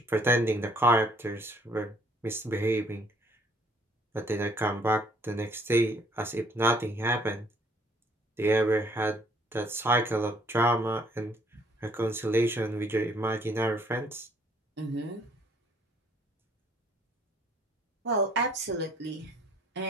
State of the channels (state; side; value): normal; both; correlation 0.62